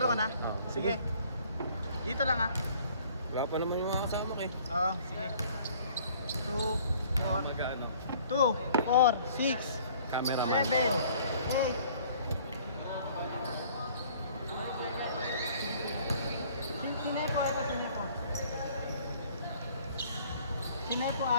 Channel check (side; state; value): both; inverted; correlation -0.55